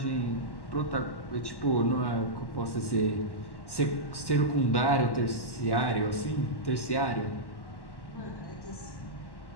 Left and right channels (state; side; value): late; right; 1.1 ms